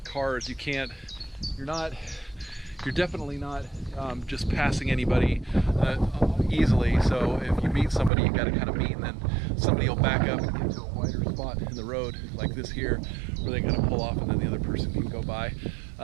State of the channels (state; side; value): drops out; left; at 8.1 s